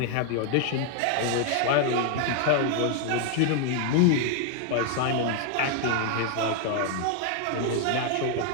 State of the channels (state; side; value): different; both; correlation 0.00